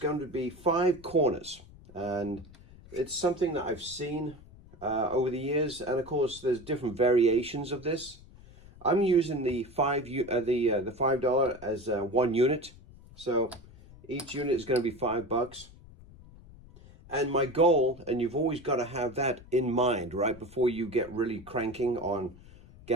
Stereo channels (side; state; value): left; noise; rumble, 21 dB below the sound